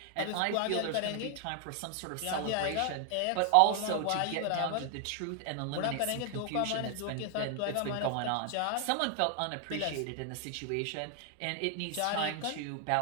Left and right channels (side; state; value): both; different; correlation 0.00